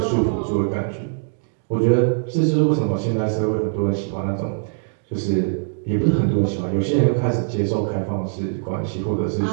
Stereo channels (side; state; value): left; silent; digital silence